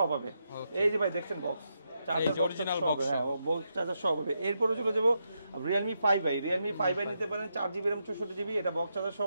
হবে। এই যে ভাই দেখছেন বক্স চার্জার অরিজিনাল বক্স, হ্যাঁ বক্স চার্জার সব হবে। এরপরে চলে যাব Realme 5i নিতে পারেন 4GB RAM 64GB, এটা বক্স চার্জার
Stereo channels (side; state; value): both; inverted; correlation -0.83